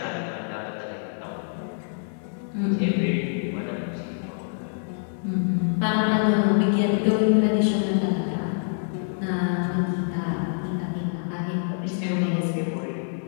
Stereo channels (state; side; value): silent; right; digital silence